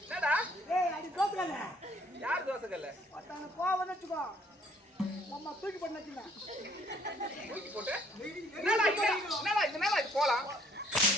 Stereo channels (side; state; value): both; normal; correlation 0.63